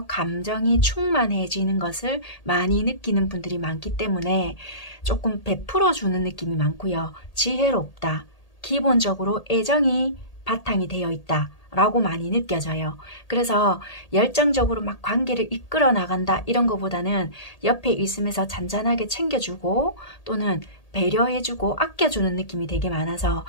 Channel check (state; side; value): late; right; 1.8 ms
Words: 감정이 충만해지는 것을 많이 느끼는 분들이 많기 때문에 조금 베풀어 주는 느낌이 많고요. 지혜롭다. 기본적으로 애정이 바탕이 되어 있다. 라고 많이 느껴져요. 그래서 열정적으로 막 관계를 이끌어 나간다 이런 것보다는 옆에 있으면서 잔잔하게 챙겨주고 또는 배려해주고 아껴주는 느낌이 되게 많아서